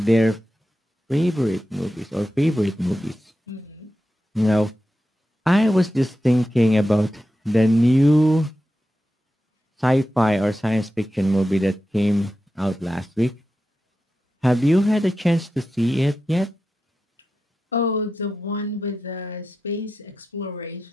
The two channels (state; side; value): normal; both; correlation 0.91